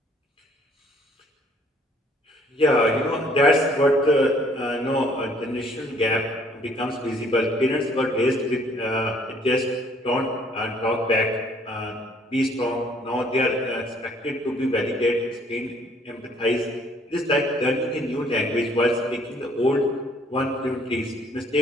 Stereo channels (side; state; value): both; normal; correlation 0.61